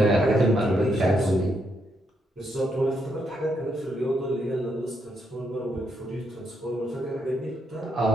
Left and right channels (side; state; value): both; normal; correlation 0.78